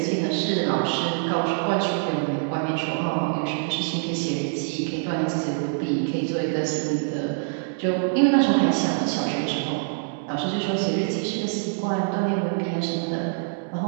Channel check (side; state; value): left; silent; digital silence